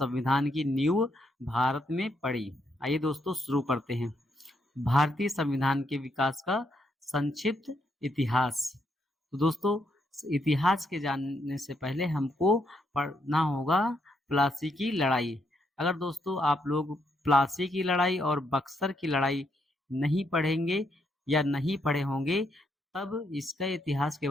की नींव भारत में पड़ी। आइए दोस्तों, शुरू करते हैं। भारतीय संविधान के विकास का संक्षिप्त इतिहास। तो दोस्तों, इतिहास के जानने से पहले हमको पढ़ना होगा प्लासी की लड़ाई। अगर दोस्तों आप लोग प्लासी की लड़ाई और बक्सर की लड़ाई नहीं पढ़ेंगे या नहीं पढ़े होंगे, तब इसका इतिहास के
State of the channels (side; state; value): both; normal; correlation 0.77